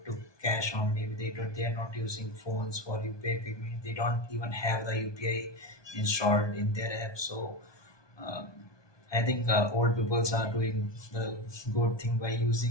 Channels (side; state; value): right; late; 1.2 ms